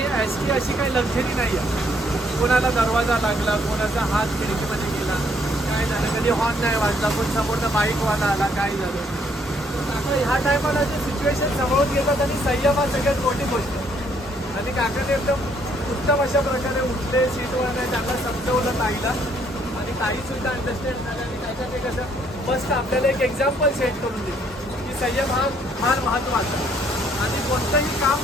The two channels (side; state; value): both; normal; correlation 0.67